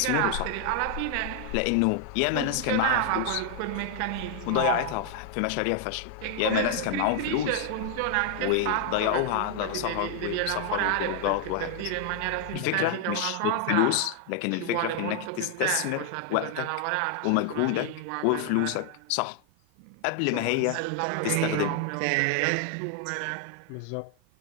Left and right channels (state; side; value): different; both; correlation 0.00